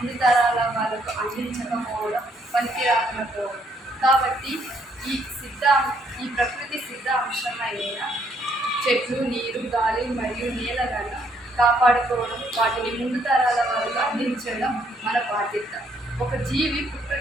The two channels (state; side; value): normal; both; correlation 0.69